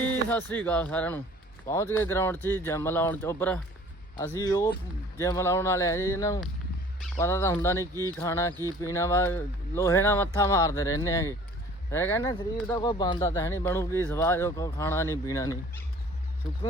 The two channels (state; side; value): normal; both; correlation 0.50